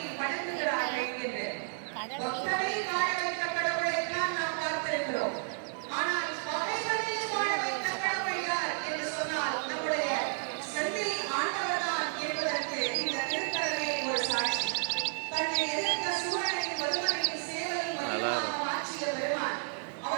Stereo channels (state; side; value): silent; left; digital silence